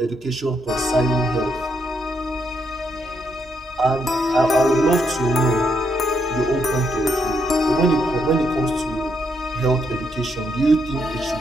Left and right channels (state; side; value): normal; both; correlation 0.77